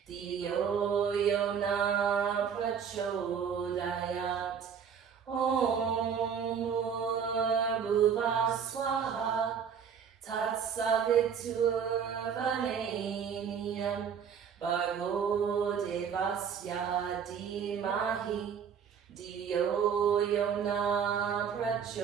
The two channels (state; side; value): quieter; left; 7.3 dB